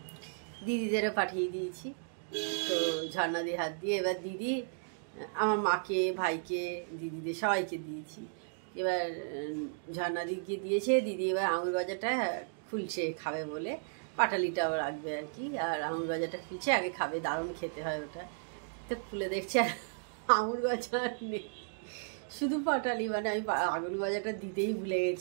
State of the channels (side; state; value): left; silent; digital silence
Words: দিদিদেরও পাঠিয়ে দিয়েছি। তো ঝর্ণাদির হাত দিয়ে এবার দিদি আমার মাকে, ভাইকে, দিদিদের সবাইকে দিয়েছি। এবার ঝর্ণাদিকে দিয়েছে, দিদি এবার আঙুল গজাটা খুলছে খাবে বলে, পাটালিটাও রাখবে আর কি, আর আঙুল গজাটা খুলছে, আগে খাবে, দারুণ খেতে হয় ওটা। তো খুলে দেখছে আর আঙুল গজা নেই, শুধু পাটালি। মানে আমি আঙুল গজাটা দিতেই ভুলে